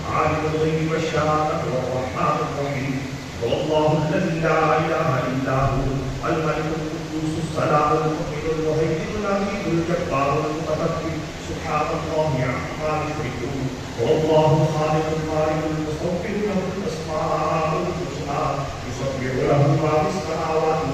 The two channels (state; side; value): identical; both; correlation 1.00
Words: 'alimul ghaibi wash-shahadati war-rahmanur rahim. Wallahu alladhi la ilaha illa hu al-malikul quddus as-salam al-mu'min al-muhaymin al-aziz al-jabbar al-mutakabbir. Subhanallah amma yushrikun. Wallahu al-khaliq al-bari al-musawwir lahu al-asma'ul husna. Yusabbihu lahu ma fis samawati